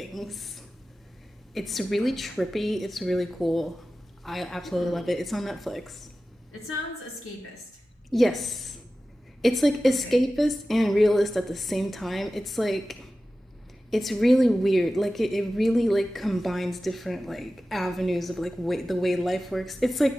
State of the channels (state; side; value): normal; both; correlation 0.95